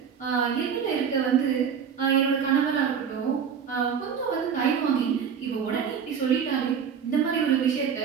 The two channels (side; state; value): left; quieter; 7.2 dB